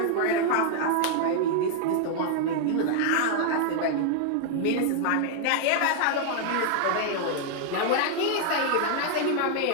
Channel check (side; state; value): both; different; correlation 0.00